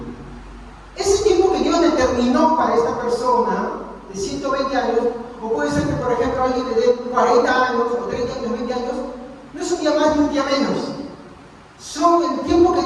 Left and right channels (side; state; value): both; identical; correlation 1.00